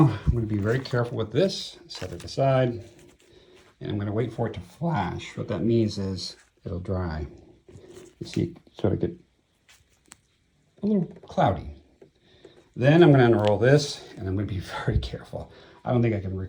I'm going to be very careful with this. Set it aside, and I'm going to wait for it to flash. What that means is it'll dry. You see it sort of get a little cloudy. Then I'm going to unroll this, and I'm going to be very careful. I don't think I can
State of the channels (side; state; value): both; identical; correlation 1.00